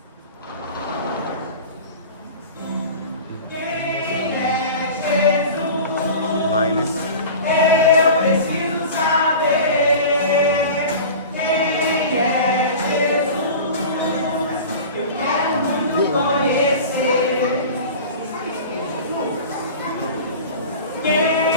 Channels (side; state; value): both; inverted; correlation -0.36